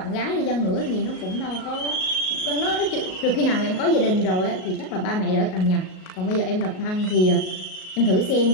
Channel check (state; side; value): late; right; 38 ms